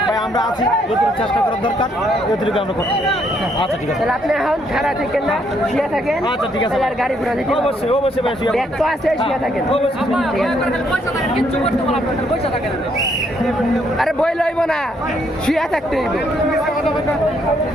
ভাই আমরা আছি যতটুকু চেষ্টা করার দরকার যতটুকু আমরা করতে আচ্ছা ঠিক আছে তাহলে আপনি এখন খারাপ থাকেন না শুয়ে থাকেন আচ্ছা ঠিক আছে আর গাড়ি ঘোড়া দিতে অবশ্যই অবশ্যই ভাই ব্যাগ তো আছে শুয়ে থাকেন আরে বই লইব না শুয়ে থাকতে হইব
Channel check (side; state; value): both; normal; correlation 0.71